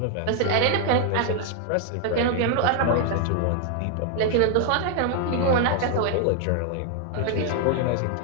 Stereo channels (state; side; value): different; both; correlation 0.00